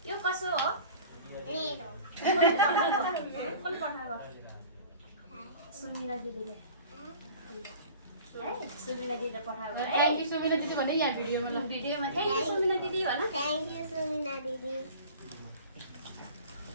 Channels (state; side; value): inverted; both; correlation -0.43